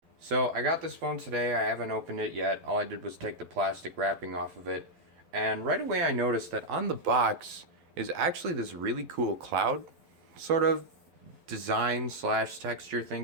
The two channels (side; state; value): left; late; 12 ms